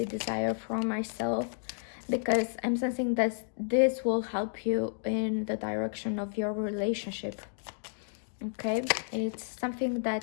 desire for myself, because I'm sensing that this will help you in the direction of your relationship. Okay, it's something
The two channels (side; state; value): right; silent; digital silence